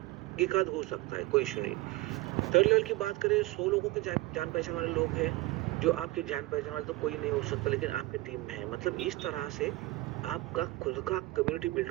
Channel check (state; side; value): quieter; left; 19.4 dB